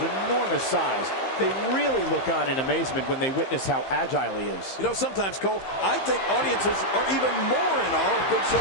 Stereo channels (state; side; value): late; right; 15 ms